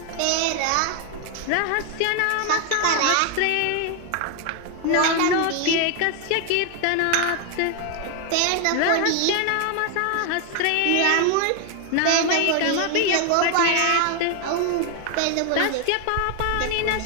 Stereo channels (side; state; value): both; different; correlation 0.01